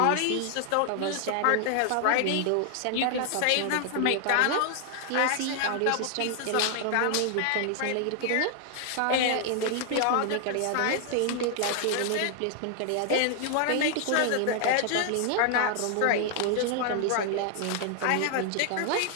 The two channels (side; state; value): both; different; correlation 0.00